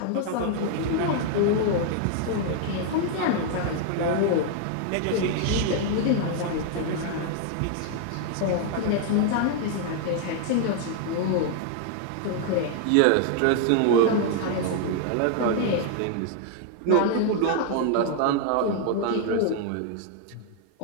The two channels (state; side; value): different; both; correlation 0.00